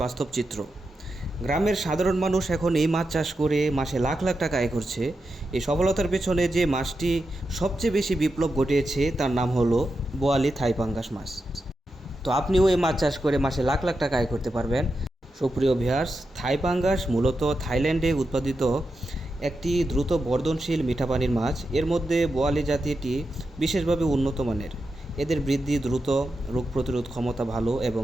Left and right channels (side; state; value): both; normal; correlation 0.88